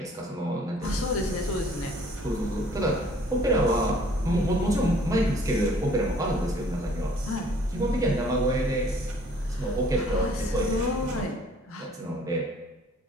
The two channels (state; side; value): normal; both; correlation 0.57